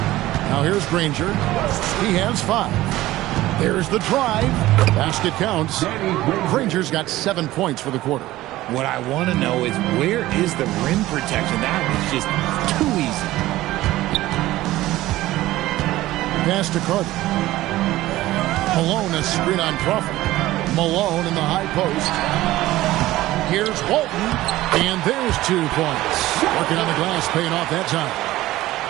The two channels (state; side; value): quieter; left; 16.5 dB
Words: Now here's Granger. He has 5. There's the drive. Basket counts. Granger's got 7 points for the quarter. What I want to know is, where is the rim protection? That was just too easy. Pass to Carter. Malone a screen on Crawford. Malone in the high post. Here's Walton. And there's 2 points. Working on the glass, paying off that time.